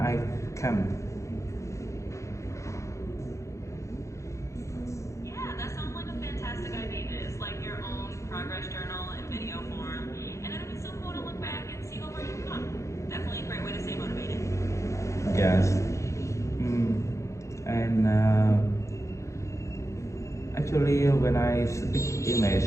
come. Yeah, that sounds like a fantastic idea. It's like your own progress journal in video form, and it'll be so cool to look back and see how far you've come. Definitely a great way to stay motivated. Yes. Mm. And actually, when I speak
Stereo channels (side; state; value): right; late; 0.15 ms